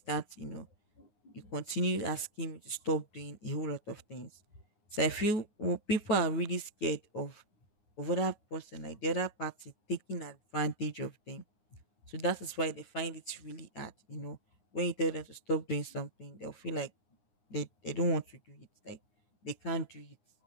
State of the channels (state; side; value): late; right; 9.5 ms